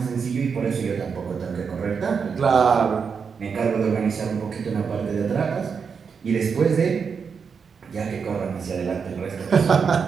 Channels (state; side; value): quieter; left; 6.0 dB